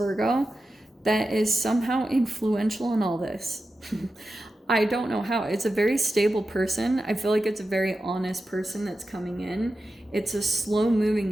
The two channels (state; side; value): normal; both; correlation 0.92